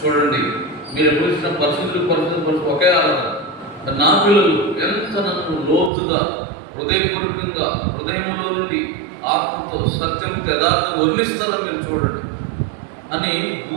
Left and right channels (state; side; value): drops out; left; at 5.9 s